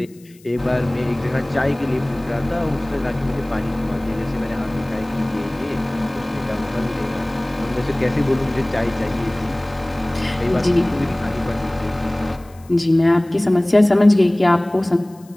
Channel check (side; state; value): left; noise; hiss, 28 dB below the sound